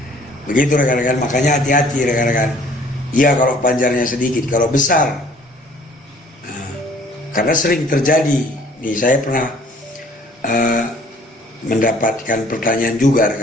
Begitu rekan-rekan, makanya hati-hati rekan-rekan. Iya kalau panjarnya sedikit, kalau besar, karena sering terjadi Nih saya pernah mendapatkan pertanyaan juga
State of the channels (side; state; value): both; normal; correlation 0.56